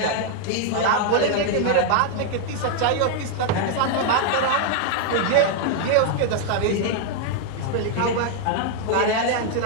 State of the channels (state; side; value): different; both; correlation 0.00